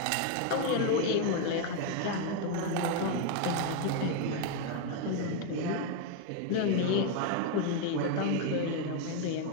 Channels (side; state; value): both; different; correlation 0.01